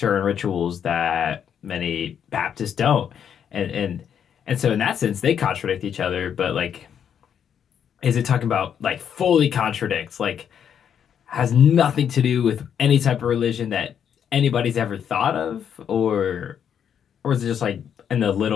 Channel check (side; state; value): right; quieter; 8.4 dB